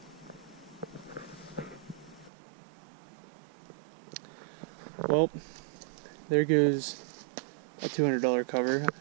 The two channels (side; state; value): left; drops out; at 2.3 s